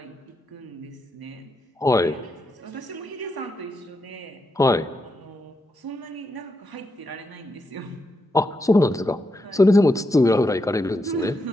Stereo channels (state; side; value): normal; both; correlation 0.83